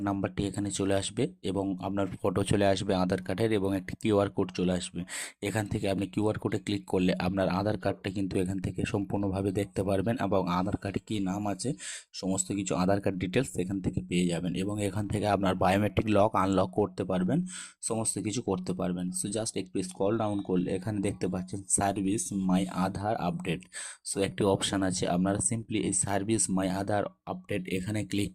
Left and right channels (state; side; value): identical; both; correlation 1.00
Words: নাম্বারটি এখানে চলে আসবে এবং আপনার ফটো চলে আসবে আধার কার্ডের এবং একটি কিউআর কোড চলে আসবে। এখান থেকে আপনি কিউআর কোডে ক্লিক করলে আপনার আধার কার্ডটা কিন্তু এখান থেকে সম্পূর্ণভাবে দেখতে পারবেন এবং আধার কার্ডে কী নাম আছে সমস্ত কিছু আধার কার্ড ডিটেলস এখান থেকে পেয়ে যাবেন এবং এখান থেকে আপনার বায়োমেট্রিক লক আনলক করতে পারবেন, সমস্ত কিছু করতে পারবেন। সো জাস্ট একটু স্ক্রল ডাউন করলে এখানে দেখতে পাচ্ছেন সার্ভিস মাই আধার আপডেট। সো একটি অপশান আছে, আপনারা সিম্পলি এই সার্ভিস মাই আধার আপডেট এখানে ক্লিক